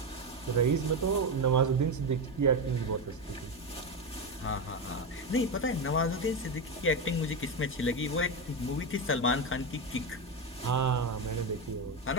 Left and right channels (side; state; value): both; normal; correlation 0.13